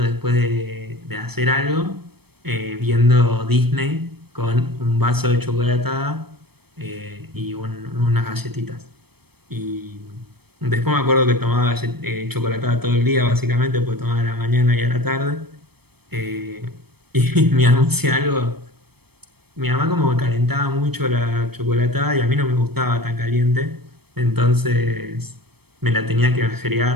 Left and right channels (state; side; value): late; left; 0.97 ms